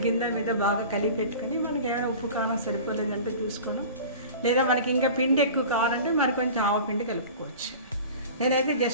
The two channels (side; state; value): both; inverted; correlation -0.38